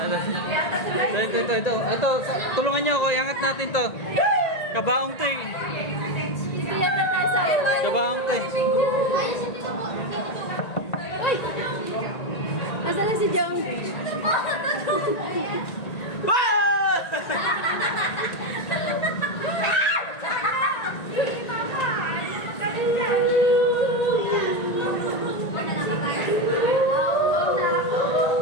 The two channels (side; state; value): right; late; 1.9 ms